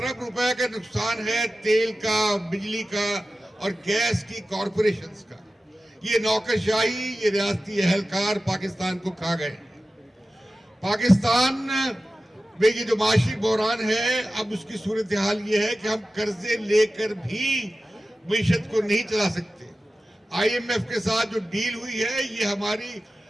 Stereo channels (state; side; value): normal; both; correlation 0.94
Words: रुपए का नुकसान है तेल का, बिजली का और गैस की कॉरपोरेशंस का। ये नौकरशाही, ये रियासती एहलकार पाकिस्तान को खा गए। पाकिस्तान में ये जो माशी बहरान है, अब उसकी सूरत हाल ये है कि हम कर्जे लेकर भी मीशत को नहीं चला सकते। IMF के साथ जो डील हुई है, ये हमारी